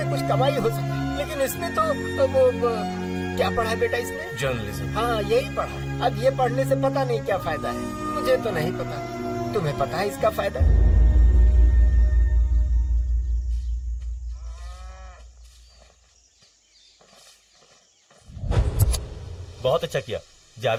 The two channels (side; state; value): both; identical; correlation 1.00